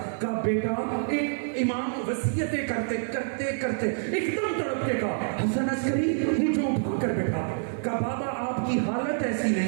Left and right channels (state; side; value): silent; left; 56 dB below the other